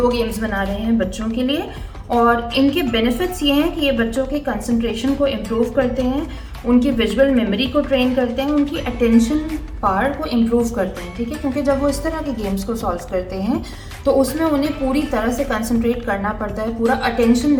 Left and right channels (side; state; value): both; identical; correlation 1.00